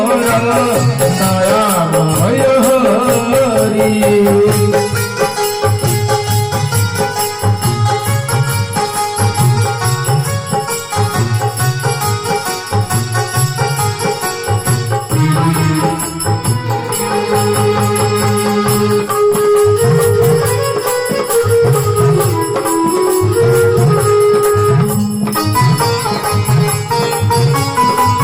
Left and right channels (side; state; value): both; identical; correlation 1.00